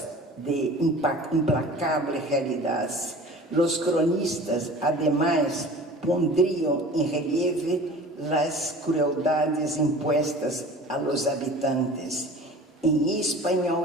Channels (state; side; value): normal; both; correlation 0.42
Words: de implacable realidad. Los cronistas, además, pondrían en relieve las crueldades impuestas a los habitantes. En español